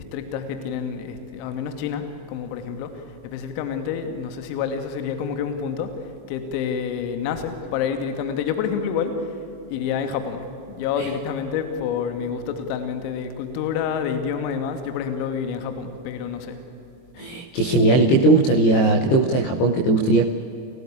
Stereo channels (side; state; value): right; late; 23 ms